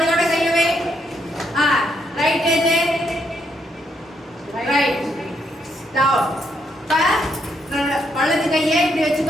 கையை வை ரைட் ஏஜ் ரைட் டவுன் வலது கையை இப்படி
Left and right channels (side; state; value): both; normal; correlation 0.76